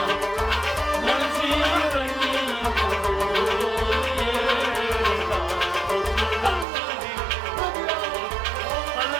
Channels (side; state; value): left; drops out; at 6.7 s